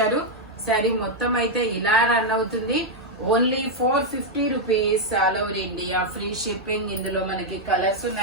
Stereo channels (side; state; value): both; normal; correlation -0.01